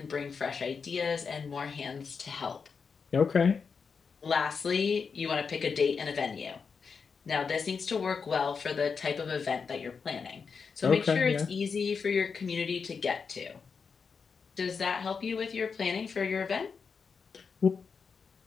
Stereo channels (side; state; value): right; quieter; 5.6 dB